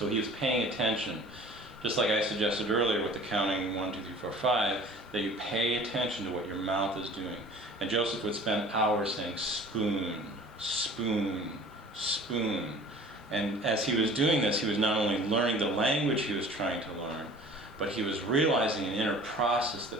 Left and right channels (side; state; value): both; normal; correlation 0.46